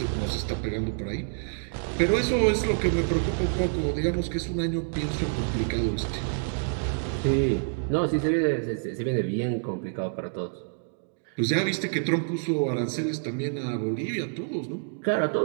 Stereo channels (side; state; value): left; silent; digital silence